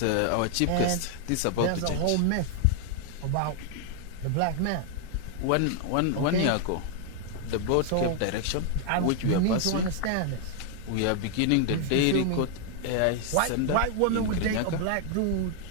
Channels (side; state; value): both; different; correlation 0.00